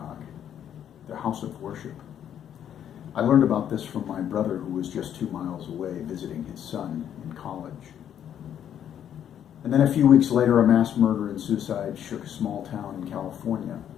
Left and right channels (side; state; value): right; quieter; 9.7 dB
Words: their house of worship. I learned about this from my brother, who was just 2 miles away visiting his son in college. And then a few weeks later, a mass murder and suicide shook a small town in California.